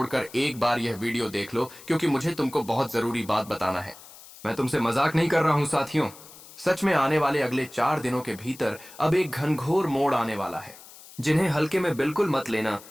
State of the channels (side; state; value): left; noise; hiss, 19 dB below the sound